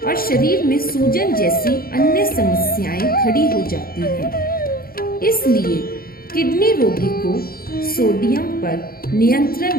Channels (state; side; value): late; right; 0.43 ms